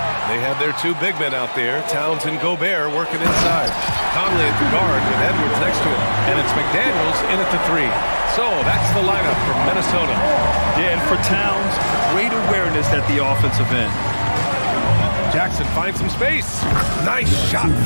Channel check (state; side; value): inverted; both; correlation -1.00